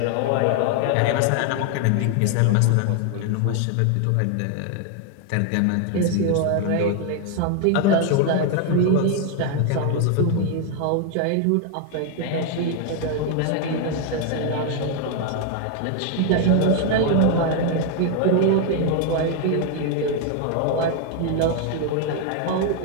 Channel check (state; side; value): different; both; correlation 0.00